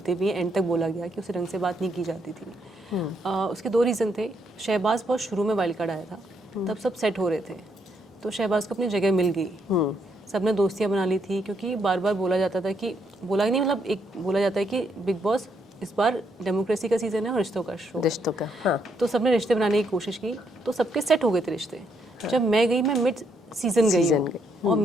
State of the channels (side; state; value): both; normal; correlation 0.75